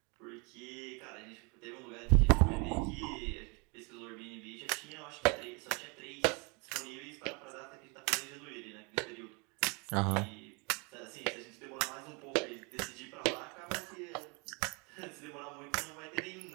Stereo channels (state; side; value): quieter; left; 31.5 dB